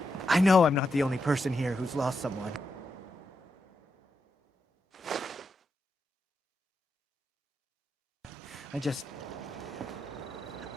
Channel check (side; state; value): both; normal; correlation 0.85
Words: I know I'm not the only person here who's lost someone. I